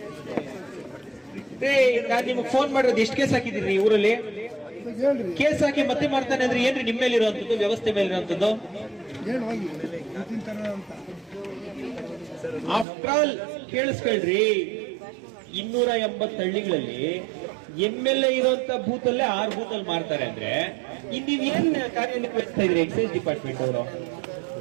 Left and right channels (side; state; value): left; drops out; at 12.9 s